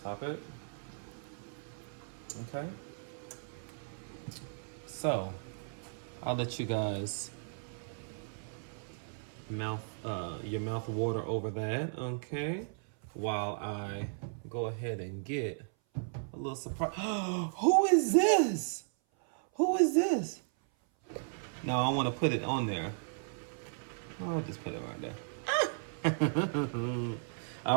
it. Okay. So I'll let you guys your mouth water over that, okay? While I go ahead and get a little surprise. Who is this? Who is this? No, I want to put it on there. I'll just put it right there.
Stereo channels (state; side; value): silent; left; 54 dB below the other